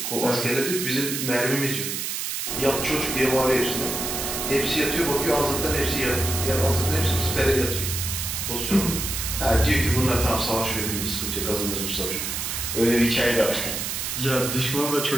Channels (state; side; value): noise; right; hiss, 3 dB below the sound